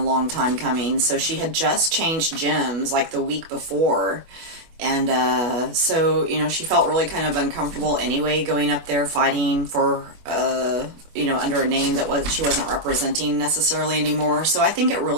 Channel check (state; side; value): late; left; 24 ms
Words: long time coming. So she had just changed gyms like the week before. And, so, she felt really kind of uncomfortable anyway, going up there fighting for, under a name that she wasn't representing necessarily anymore. So I think it